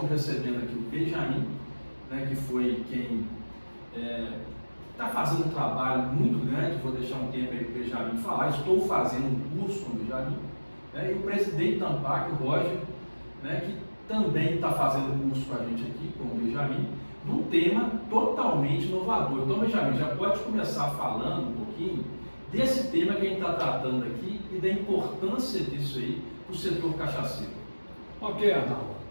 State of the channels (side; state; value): both; inverted; correlation -1.00